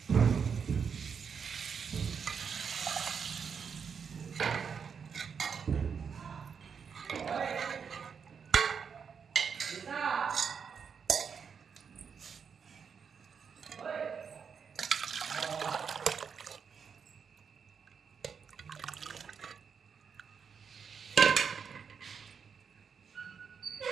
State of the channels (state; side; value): quieter; left; 6.5 dB